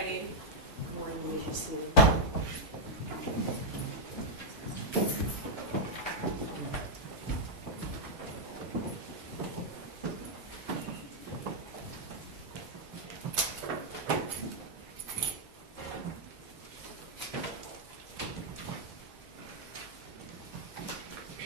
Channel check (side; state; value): both; normal; correlation -0.05